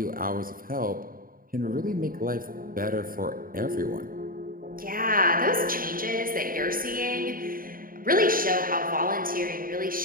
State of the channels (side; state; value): left; late; 0.41 ms